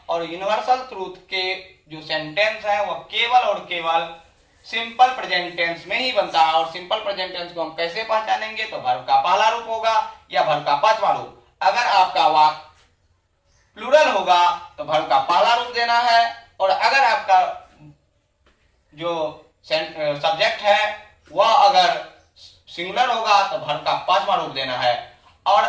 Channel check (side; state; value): both; identical; correlation 1.00